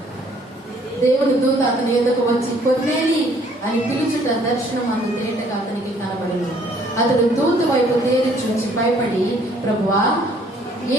దేవుని దూత అతని ఎదుకు వచ్చి కొర్నేలి అని పిలుచుట దర్శనం అందు తేటగా అతనికి కనబడింది. అతడు దూత వైపు తేరి చూసి భయపడి, ప్రభువా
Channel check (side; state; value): both; normal; correlation 0.61